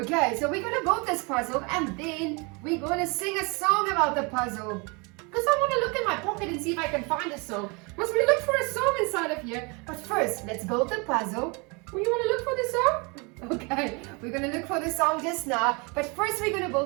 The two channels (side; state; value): left; quieter; 30.2 dB